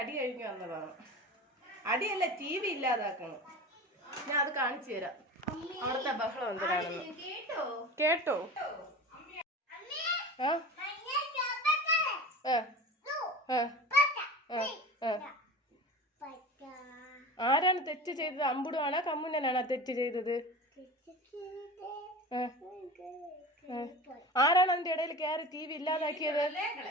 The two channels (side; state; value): both; normal; correlation 0.33